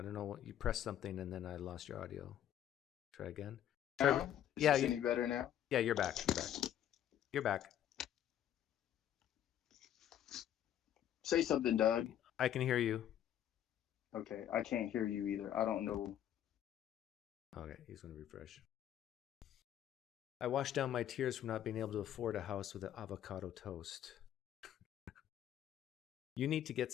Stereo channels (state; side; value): quieter; right; 10.8 dB